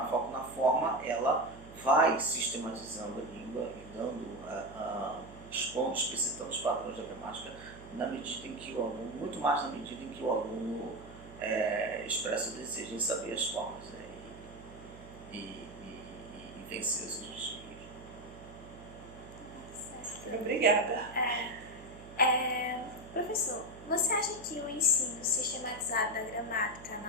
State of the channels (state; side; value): noise; right; hum, 17 dB below the sound